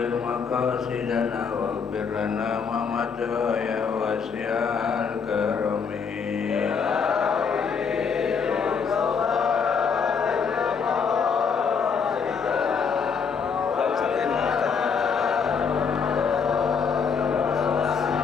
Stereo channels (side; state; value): right; quieter; 6.0 dB